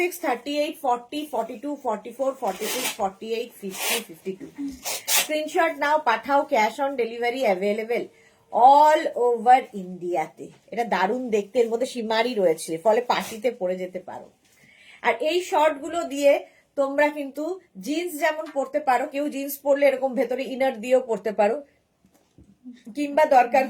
38, 40, 42, 44, 46, 48, 50, 52। স্ক্রিনশট নাও, পাঠাও, cash on delivery available all over ইন্ডিয়াতে। এটা দারুণ দেখতে, এর মধ্যে সীমারি রয়েছে, ফলে পার্টিতে পরে যেতে পারো। আর এই শর্ট গুলো দিয়ে তোমরা কিন্তু জিন্স যেমন পরতে পারো, কেউ জিন্স পরলে এরকম ভেতরে ইনার দিয়েও পরতে পারো, কিংবা দরকার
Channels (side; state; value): both; identical; correlation 1.00